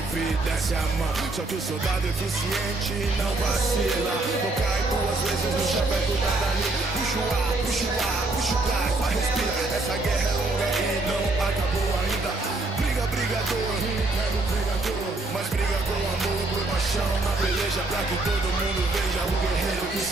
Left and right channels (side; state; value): left; quieter; 3.1 dB